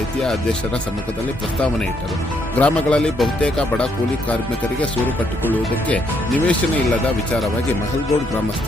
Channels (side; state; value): both; normal; correlation 0.73